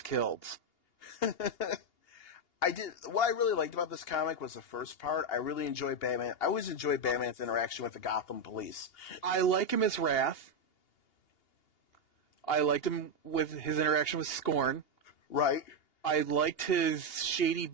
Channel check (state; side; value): late; right; 2.8 ms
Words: killed. What I really liked about this comic was the first part. I really enjoyed Batman. I always enjoy Batman's interaction with the Gotham police. I like him as Wrath. I liked him with his interaction with Scorn. Right. I liked his shady